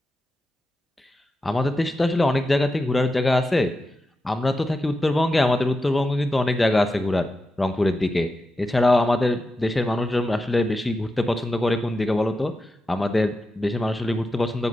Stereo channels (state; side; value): normal; both; correlation 0.90